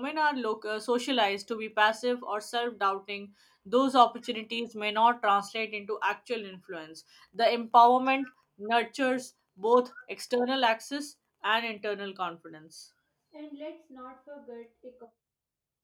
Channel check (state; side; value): identical; both; correlation 1.00